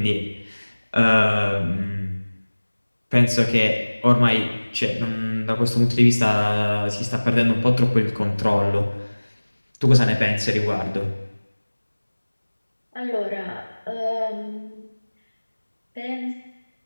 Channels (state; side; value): inverted; both; correlation -1.00